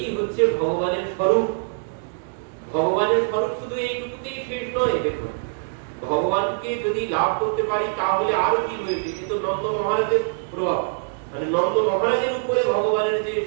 হচ্ছে ভগবানের স্বরূপ। ভগবানের স্বরূপ শুধু এইটুকুতেই শেষ নয়। দেখুন, ভগবানকে যদি লাভ করতে পারি তাহলে আরো কি হয়েছে, কিন্তু নন্দ মহারাজের প্রভাব, মানে নন্দ মহারাজের উপরে ভগবানের যে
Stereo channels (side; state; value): left; silent; digital silence